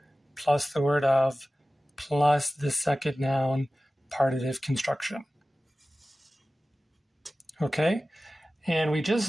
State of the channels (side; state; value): both; normal; correlation 0.96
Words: plus the word of plus the second noun partitive construction. Okay? And we